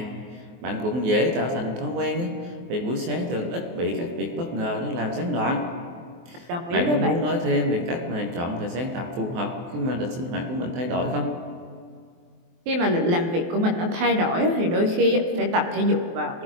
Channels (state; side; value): late; left; 23 ms